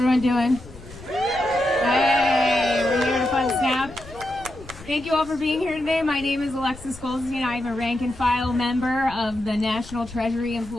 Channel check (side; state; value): left; noise; rumble, 19 dB below the sound